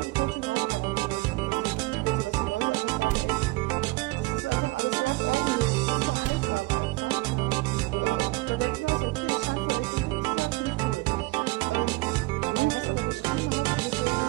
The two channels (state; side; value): quieter; left; 22.1 dB